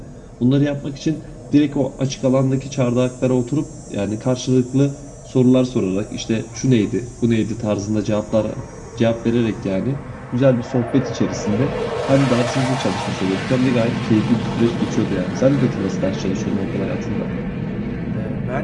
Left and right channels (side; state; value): both; identical; correlation 1.00